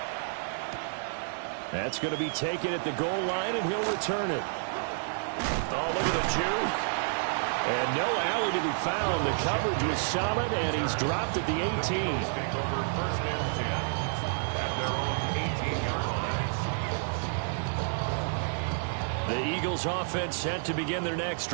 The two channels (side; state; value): left; silent; digital silence